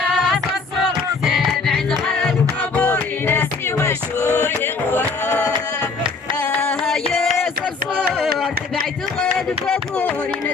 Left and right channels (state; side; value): quieter; right; 4.4 dB